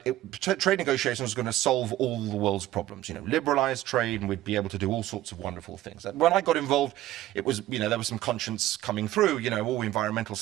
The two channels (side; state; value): left; quieter; 14.7 dB